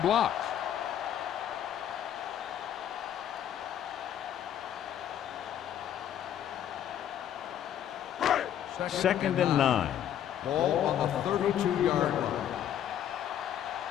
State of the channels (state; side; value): quieter; right; 10.3 dB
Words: Second and 9. Ball on the 32-yard line.